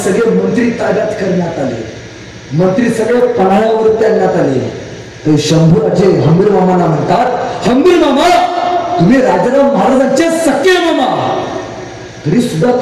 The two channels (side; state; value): both; identical; correlation 1.00